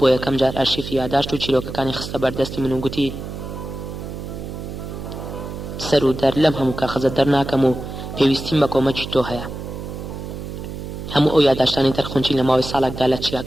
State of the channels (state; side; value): noise; right; hum, 8 dB below the sound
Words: یەکەم جار ئارشیفی یاداشت و چیرۆکەکانی خستە بەردەستی من و گوتی سەر و دەر لەم هەموو کاغەزە دەرناکەم و پێویستیم بە کۆمەکی تۆ هەیە. هەموو ئەو یادداشتانی تەرخونچی لە ماوەی ساڵێکدا لە